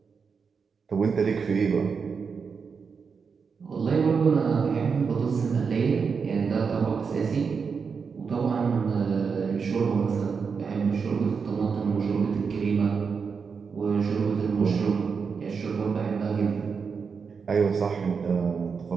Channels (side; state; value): left; quieter; 5.7 dB